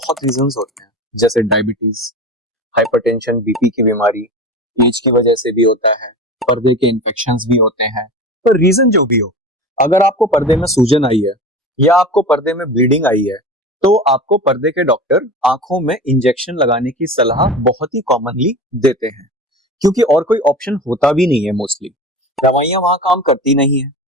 रीजंस होते हैं, जैसे डायबिटीज, हाइपरटेंशन, बीपी की बीमारी, एज की वजह से भी होता है, पर्दे के इन्फेक्शंस भी होते हैं। पर रीजन जो भी हो, अगर आपको पर्दे में सूजन आई है या आपको पर्दे में ब्लीडिंग आई है, तो आपको पर्दे के डॉक्टर आंखों में इंजेक्शन लगाने की सलाह बहुत ही कॉमनली देते हैं, क्योंकि और कोई ऑप्शन होता भी नहीं है। मोस्टली दवाइयां वहां काम करती नहीं है,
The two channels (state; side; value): normal; both; correlation 0.31